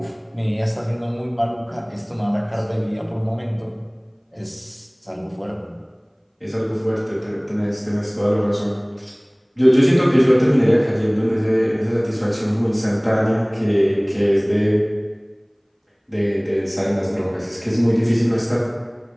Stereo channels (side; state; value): both; identical; correlation 1.00